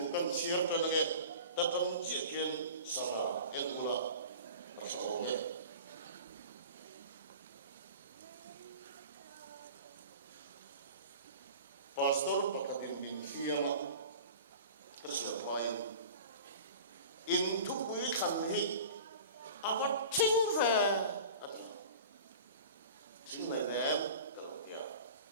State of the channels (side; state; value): both; inverted; correlation -0.39